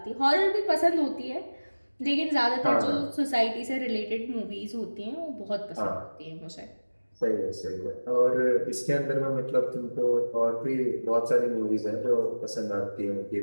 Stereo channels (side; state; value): both; inverted; correlation -1.00